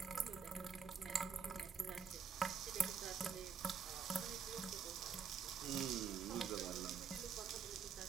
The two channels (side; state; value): left; quieter; 6.1 dB